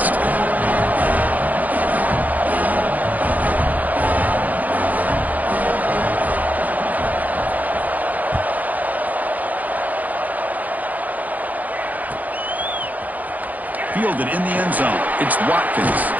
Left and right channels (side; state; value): left; late; 0.079 ms